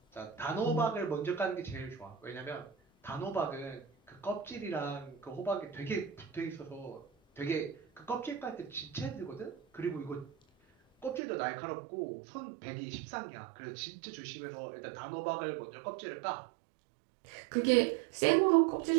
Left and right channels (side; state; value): left; drops out; at 11.2 s